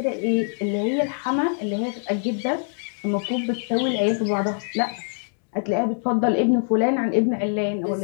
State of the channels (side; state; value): right; silent; 63 dB below the other